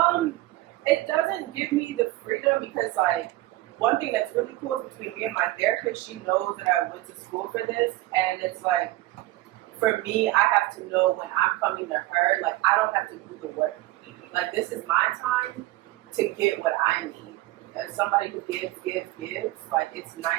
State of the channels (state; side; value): quieter; left; 18.0 dB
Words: It doesn't give me the freedom because like one thing that's really cool is between me and my therapist, she knows that I went to school for this, and it's like, for me, I have to know when I'm coming to her, like, I don't have to do the work. Like, this is my time to get what I need. As somebody who gives, like, it's